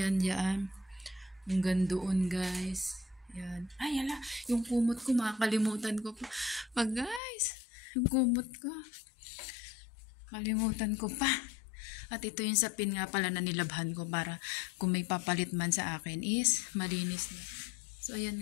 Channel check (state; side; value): drops out; right; at 7.2 s